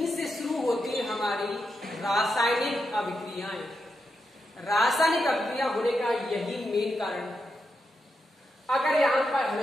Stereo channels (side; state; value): both; normal; correlation 0.85